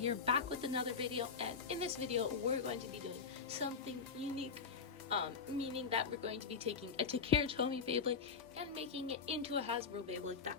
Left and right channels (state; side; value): quieter; right; 5.5 dB